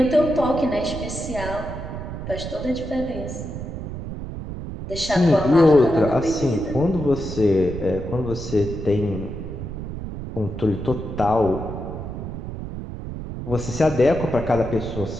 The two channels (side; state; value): right; noise; rumble, 8 dB below the sound